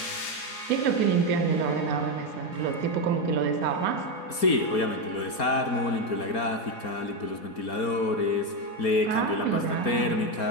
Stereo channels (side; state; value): right; late; 4.3 ms